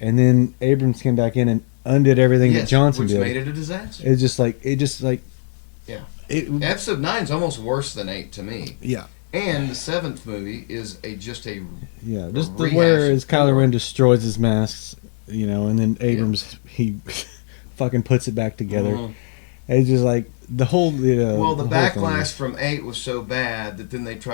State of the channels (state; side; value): silent; right; digital silence